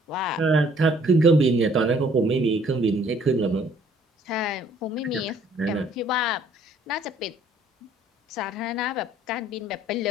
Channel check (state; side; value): normal; both; correlation 0.60